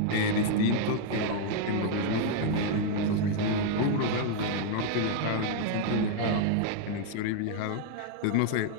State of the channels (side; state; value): both; different; correlation 0.00